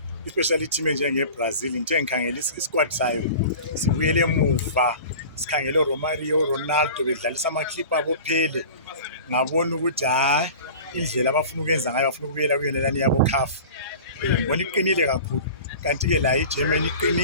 especially team enjengeBrazil. Ngithe ngikhangela isquad sayo sibuyele emuva, sikhangele uRomario, Ronaldo bedlalisa ama-clip abo phele. Ngabona ukuthi hayi indlela abafuna ukwenza ngayo bafuna ukubuyela kuyonelani yabo CAF. Ngibona iqinile kakhulu. Kanti-ke la iGermany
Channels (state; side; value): inverted; both; correlation -0.38